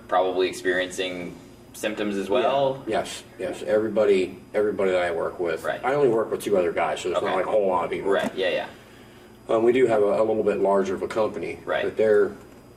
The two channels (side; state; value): both; identical; correlation 1.00